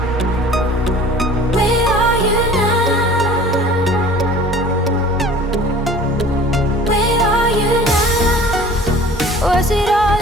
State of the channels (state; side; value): normal; both; correlation 0.45